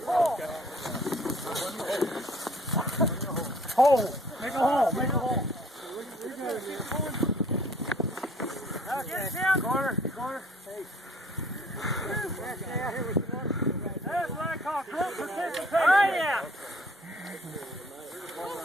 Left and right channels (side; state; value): both; normal; correlation 0.57